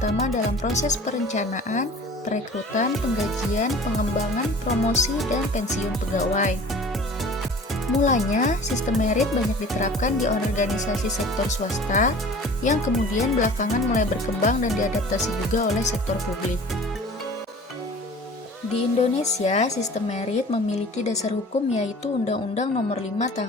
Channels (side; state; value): both; normal; correlation 0.44